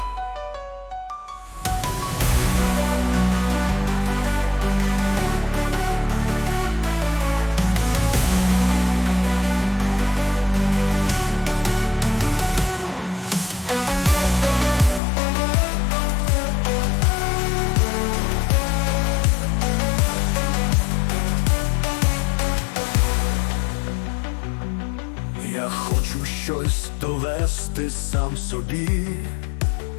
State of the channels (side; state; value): right; drops out; at 15.0 s